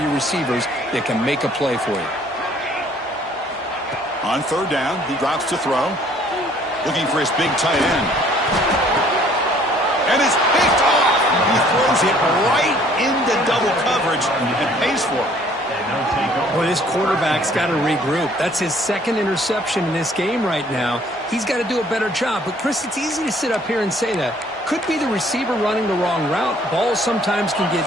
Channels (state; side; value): normal; both; correlation 0.59